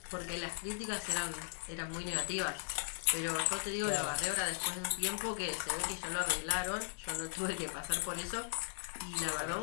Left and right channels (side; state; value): right; silent; digital silence